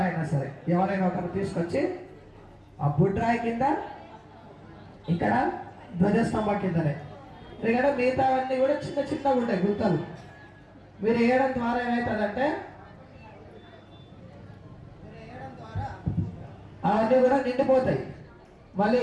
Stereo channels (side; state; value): both; identical; correlation 1.00